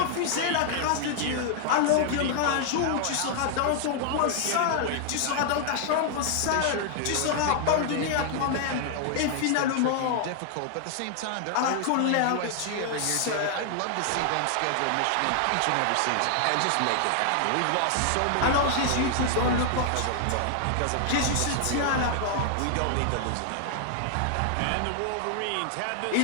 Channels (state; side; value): different; both; correlation 0.00